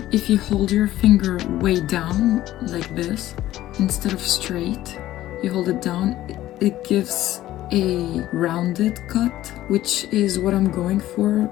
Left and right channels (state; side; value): quieter; right; 14.5 dB